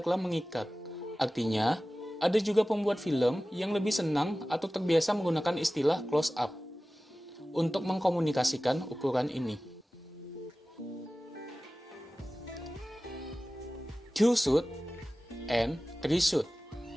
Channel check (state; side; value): normal; both; correlation 0.96